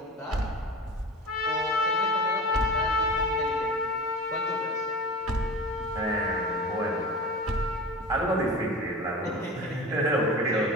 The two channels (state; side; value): normal; both; correlation 0.32